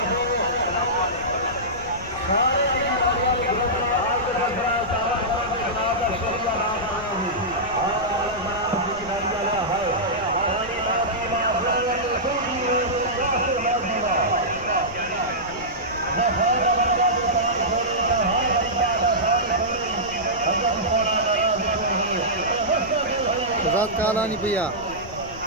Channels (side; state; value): left; noise; rumble, 16 dB below the sound